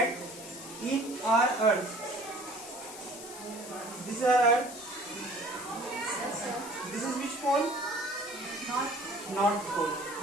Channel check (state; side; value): noise; left; hiss, 13 dB below the sound